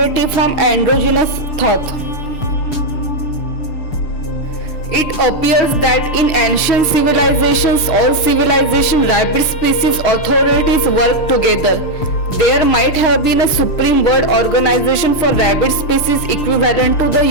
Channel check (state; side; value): late; right; 6.8 ms